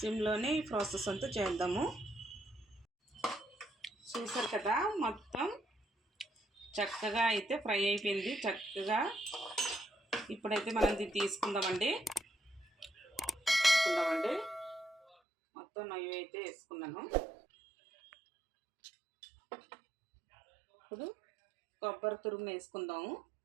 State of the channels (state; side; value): drops out; left; at 15.2 s